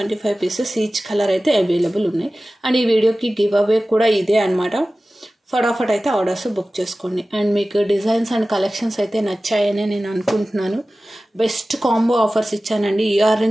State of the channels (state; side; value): normal; both; correlation 0.96